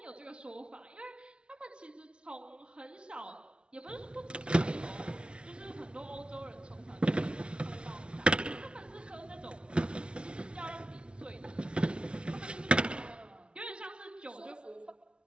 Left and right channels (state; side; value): late; left; 0.058 ms